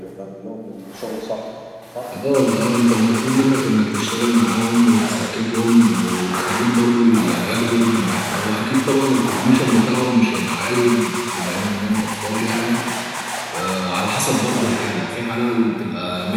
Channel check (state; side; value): identical; both; correlation 1.00